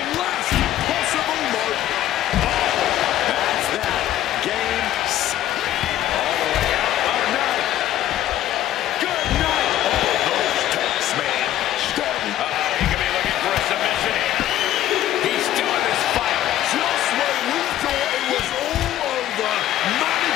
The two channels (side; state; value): right; quieter; 12.8 dB